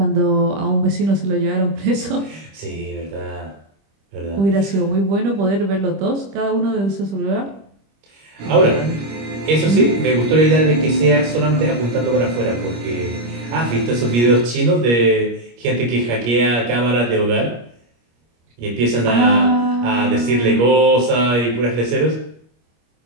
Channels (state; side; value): late; left; 25 ms